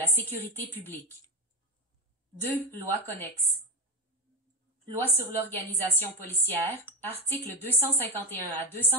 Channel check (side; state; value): both; normal; correlation 0.13